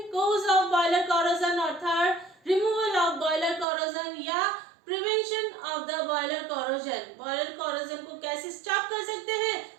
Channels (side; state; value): left; drops out; at 3.7 s